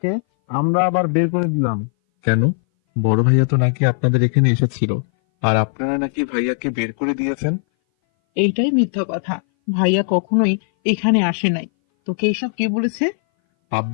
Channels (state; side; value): silent; right; 60 dB below the other